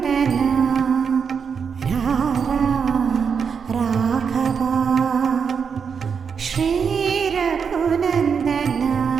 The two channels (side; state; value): left; quieter; 6.4 dB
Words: రారా రాఘవా శ్రీ రఘునందన